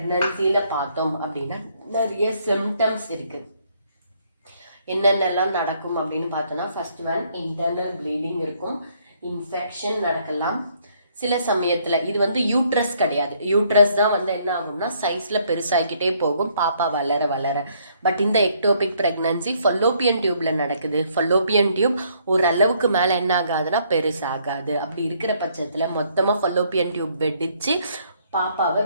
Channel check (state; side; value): inverted; both; correlation -0.67